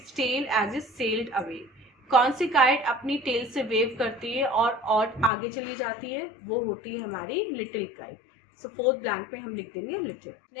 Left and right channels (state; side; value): drops out; right; at 5.3 s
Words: tail as it sailed away. कौन सी काइट अपनी टेल से वेव करती है और आगे चली जाती है, वो होती है हमारी little kite. So fourth blank में हम लिख देंगे little.